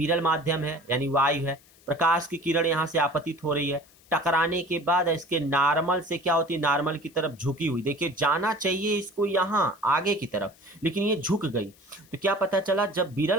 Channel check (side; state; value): left; noise; hiss, 28 dB below the sound